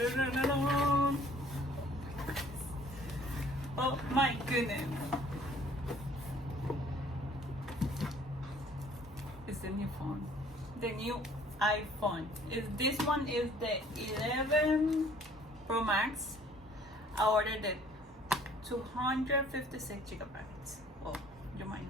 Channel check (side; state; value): both; normal; correlation 0.56